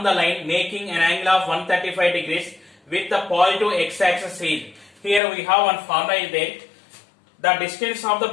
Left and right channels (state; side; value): drops out; right; at 5.2 s